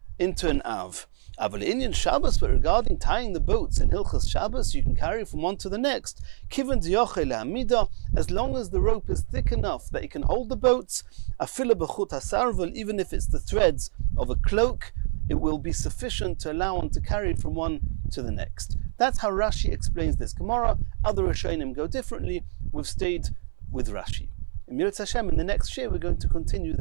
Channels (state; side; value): silent; left; 61 dB below the other